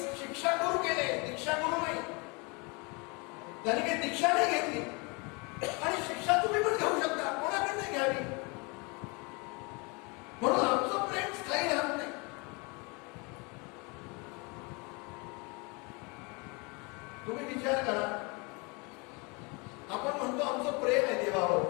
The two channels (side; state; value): right; quieter; 29.7 dB